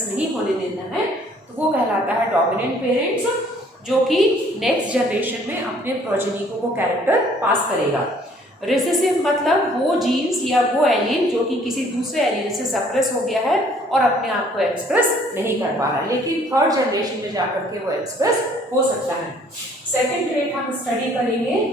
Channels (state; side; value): normal; both; correlation 0.59